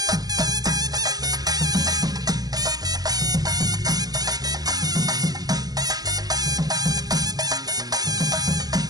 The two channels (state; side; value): late; left; 0.19 ms